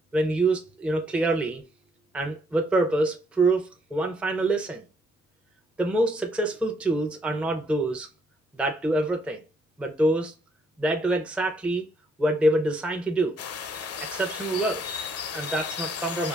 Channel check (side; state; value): both; normal; correlation 0.70